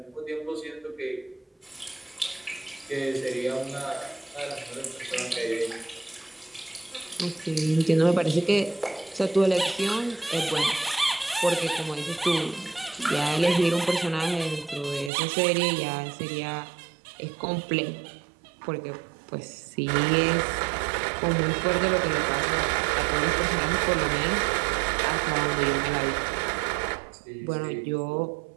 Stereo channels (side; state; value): left; drops out; at 15.1 s